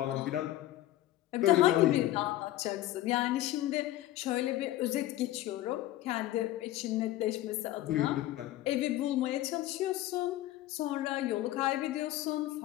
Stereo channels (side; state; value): right; quieter; 14.9 dB